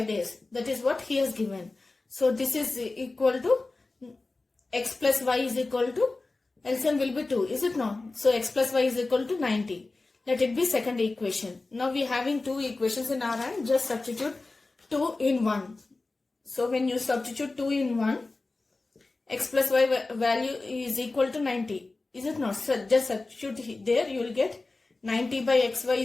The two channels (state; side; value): quieter; right; 3.4 dB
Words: days. That is what he has given. So this is equal to x plus y is equal to, LCM will be 2, is it not? So x plus y is equal to 90. Let it be second equation. Now we are having two equations in our hand. Just substitute 2 in 1. So when you substitute 2 in 1, x plus y value is equal to 90. Is it not? So just substitute there. You will get 90 by xy